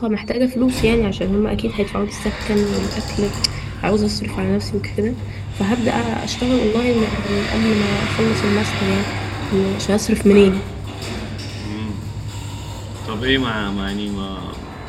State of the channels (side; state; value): both; identical; correlation 1.00